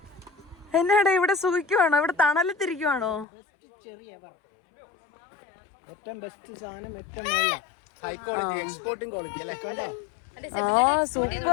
എന്നാടെ ഇവിടെ സുഖിക്കുവാണോ? ഇവിടെ തണലത്തിരിക്കുവാണോ? ഏറ്റവും ബെസ്റ്റ് സാധനം, ഏറ്റവും ഹൈ ക്വാളിറ്റി, എക്സ്പോർട്ടിംഗ് ക്വാളിറ്റി അല്ലേ? ആ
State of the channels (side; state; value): right; drops out; at 3.2 s